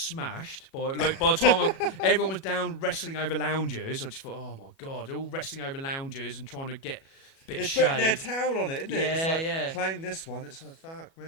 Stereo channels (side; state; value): right; late; 37 ms